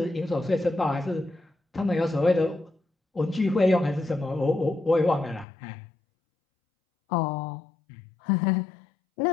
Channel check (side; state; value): right; drops out; at 5.5 s